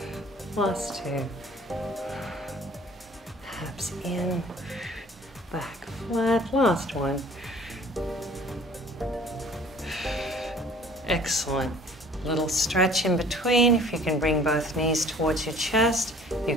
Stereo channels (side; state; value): both; normal; correlation 0.51